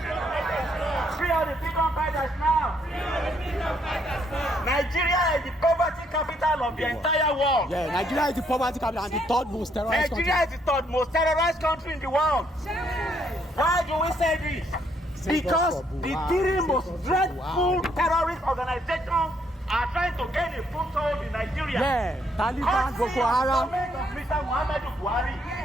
all the freedom fighters now. Nigeria is the poverty capital of the entire world. Yeah, Nigeria is the poverty capital and the third most terrorized country. Nigeria is the third most terrorized country in the world. Why do we say this? Because the three most dreadful terrorist organizations are trying to gain a foothold in Nigeria. Yeah, Taliban, Courtesy Boko of the Haram. government of Mr. Muhammadu Buhari.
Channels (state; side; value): normal; both; correlation 0.71